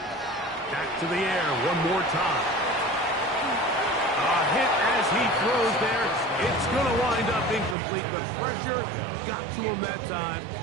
Back to the air one more time. A hit as he throws there. It's going to wind up incomplete. The pressure got to him that time,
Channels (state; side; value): drops out; left; at 7.8 s